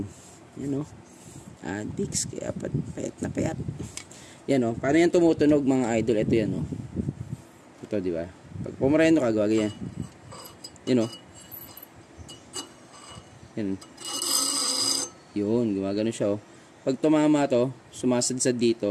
Yan o. Advix, kaya payat na payat. Yan o. Paano yan tumutunog mga idol? Ito yan o. Ito, di ba? Pag pumareno ka, gawag yan. Yan o. Yan. Yun, gumagano siya o. Pag tumama to, sumasadsad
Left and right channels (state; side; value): identical; both; correlation 1.00